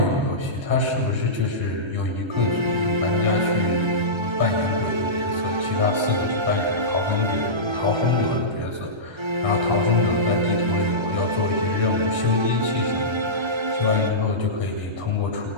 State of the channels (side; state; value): left; late; 1.3 ms